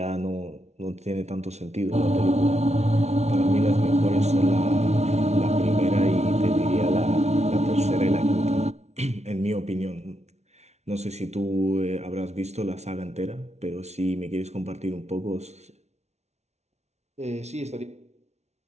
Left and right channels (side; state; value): left; late; 0.32 ms